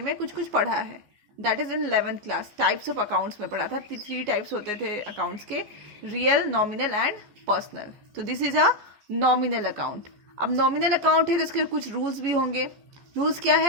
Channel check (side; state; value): left; late; 14 ms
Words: कुछ पढ़ा है, that is in 11th class. Types of accounts में पढ़ा था, 3 टाइप्स होते थे अकाउंट्स के, रियल, नॉमिनल एंड पर्सनल. तो this is a nominal account. अब नॉमिनल अकाउंट है तो इसके कुछ रूल्स भी होंगे. रूल्स क्या